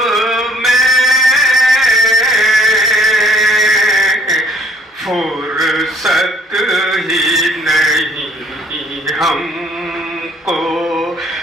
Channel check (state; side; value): normal; both; correlation 0.59